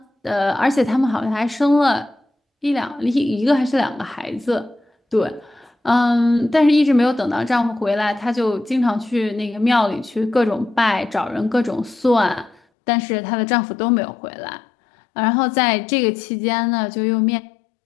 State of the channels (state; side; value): drops out; right; at 12.6 s